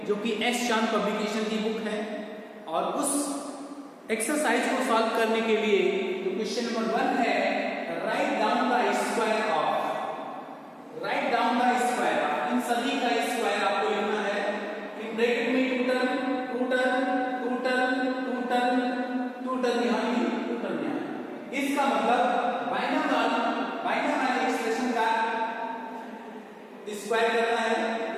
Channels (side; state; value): both; identical; correlation 1.00